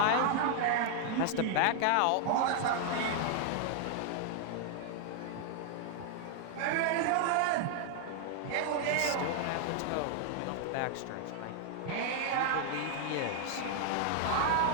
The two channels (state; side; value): different; both; correlation 0.00